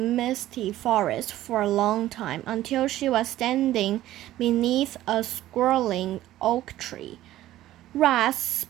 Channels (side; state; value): left; quieter; 14.4 dB